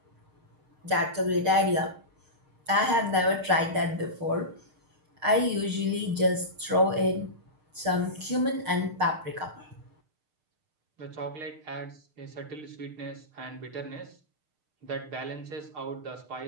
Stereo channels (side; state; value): left; late; 6.6 ms